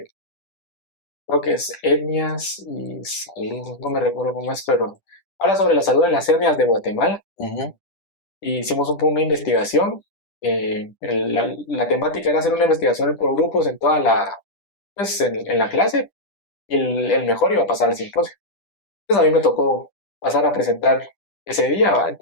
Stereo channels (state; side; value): late; right; 10 ms